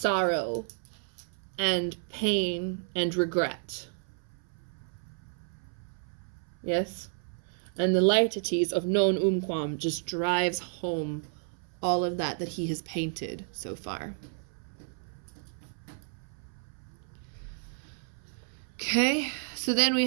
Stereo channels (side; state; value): left; silent; 57 dB below the other